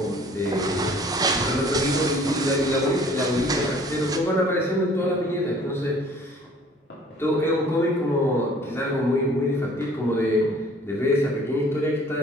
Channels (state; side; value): normal; both; correlation 0.53